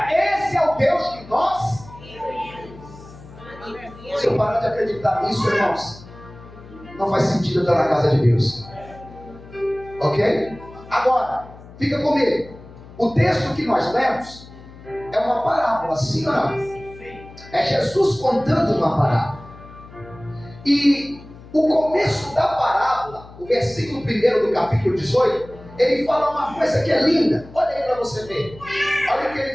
Esse é o Deus que nós. Se eu parar de acreditar nisso, irmãos, não faz sentido eu estar na casa de Deus. Ok? Agora, fica comigo. O texto que nós lemos é uma parábola, sim ou não? É Jesus contando uma parábola. E o começo da parábola, o versículo 1 do capítulo 18, ele fala uma coisa que é linda. Olha aí para você ver. Olha o que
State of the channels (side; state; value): left; noise; hum, 19 dB below the sound